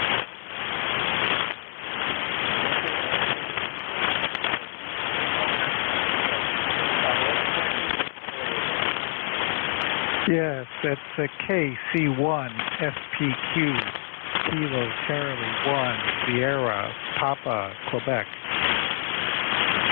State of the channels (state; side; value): silent; right; 61 dB below the other